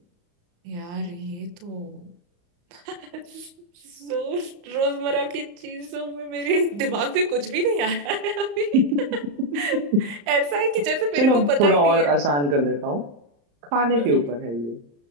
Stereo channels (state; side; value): late; left; 35 ms